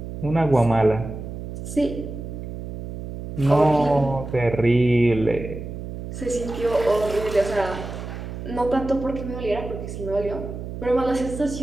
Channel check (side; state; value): right; noise; hum, 8 dB below the sound